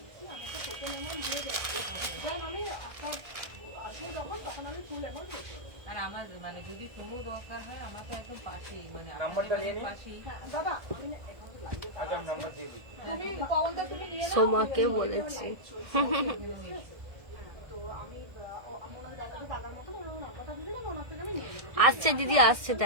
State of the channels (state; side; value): late; left; 1.6 ms